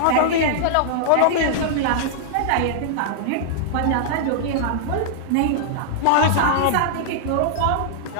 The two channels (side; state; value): both; different; correlation -0.01